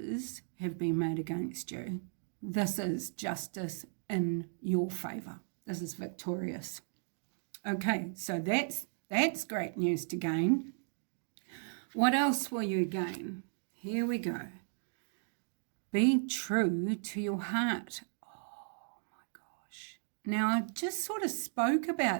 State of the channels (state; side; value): silent; left; digital silence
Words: have been made against you. This is justice in your favour. This is victorious. Okay, so that's great news to gain. What else will you gain? Here we go. Be true to your heart. Now, I just sort of spoke